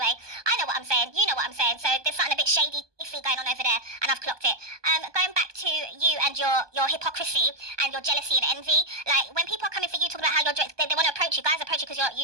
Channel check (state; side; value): late; left; 1.2 ms